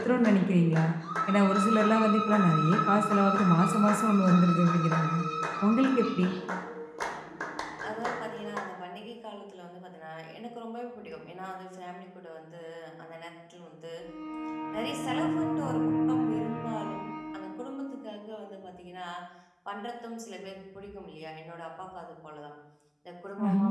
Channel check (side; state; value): both; identical; correlation 1.00